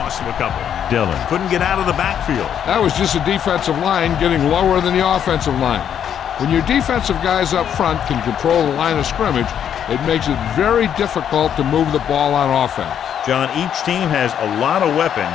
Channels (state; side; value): quieter; right; 9.0 dB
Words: to a couple. Dillon couldn't get out of the backfield. That was just a defensive line getting lower than the offensive line. When your defensive guys up front can control the line of scrimmage, it makes it very difficult to move the ball on offense. John, each team has a lot of